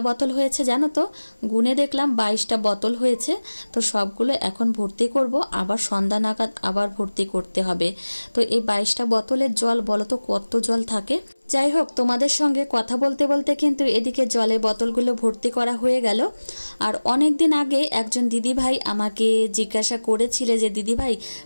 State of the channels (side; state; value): both; inverted; correlation -1.00